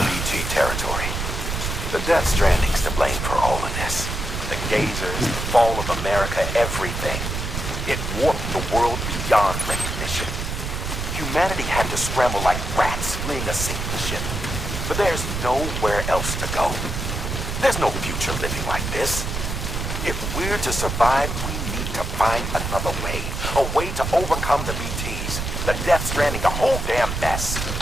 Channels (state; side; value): noise; right; rumble, 4 dB below the sound